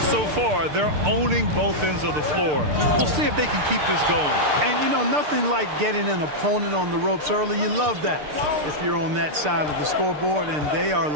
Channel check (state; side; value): late; left; 6.7 ms